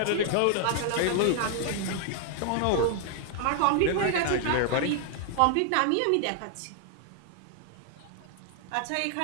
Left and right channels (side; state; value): both; different; correlation 0.00